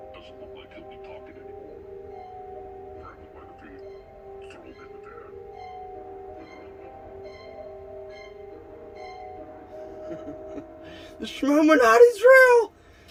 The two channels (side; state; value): both; identical; correlation 1.00